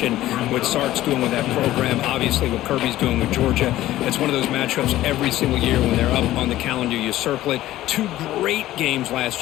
what Sark's doing with that program, obviously what Kirby's doing with Georgia. It's one of those matchups every single year when they're up on the calendar. You circle it. 2 great games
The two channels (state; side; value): quieter; right; 14.9 dB